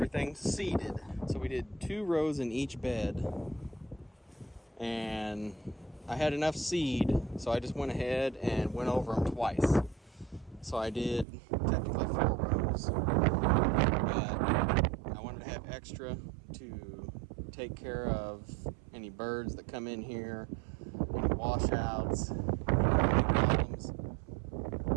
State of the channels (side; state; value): left; drops out; at 11.2 s